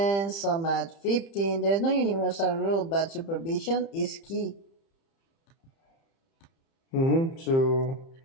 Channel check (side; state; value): right; late; 30 ms